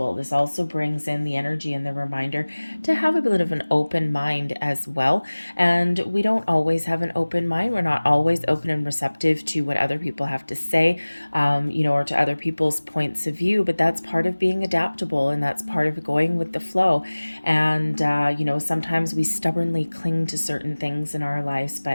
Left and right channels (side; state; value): both; inverted; correlation -1.00